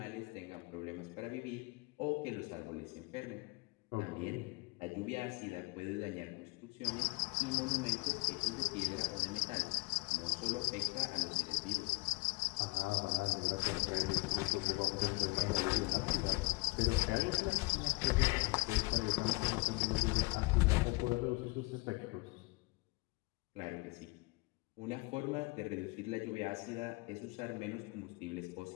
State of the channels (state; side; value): quieter; right; 26.4 dB